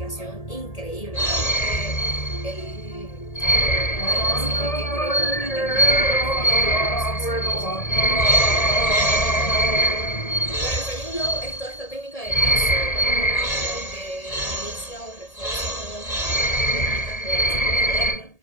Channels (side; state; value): right; late; 1.8 ms